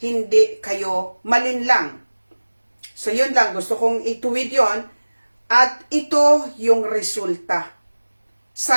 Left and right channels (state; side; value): inverted; both; correlation -1.00